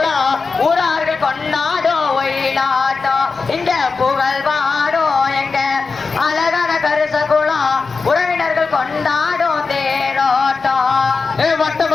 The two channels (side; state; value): right; quieter; 4.5 dB